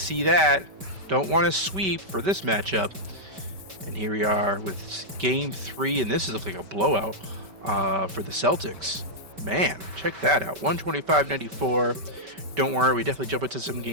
that. Don't want to sweep for this matchup. And here we are with Game 3. And this is looking like a blowout for the Celtics. Man, check that out. 125-94. Don't worry, we definitely jump into some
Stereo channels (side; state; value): left; late; 5.2 ms